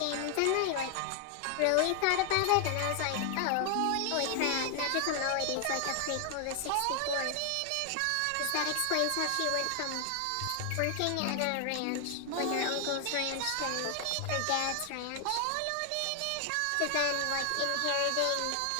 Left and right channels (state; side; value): different; both; correlation 0.00